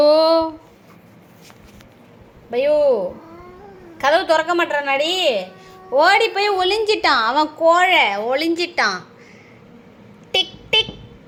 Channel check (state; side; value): identical; both; correlation 1.00